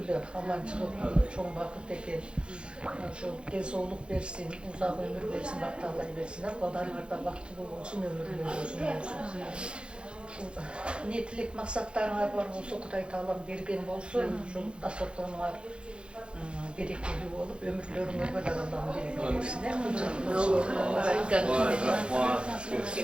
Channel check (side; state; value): left; late; 0.055 ms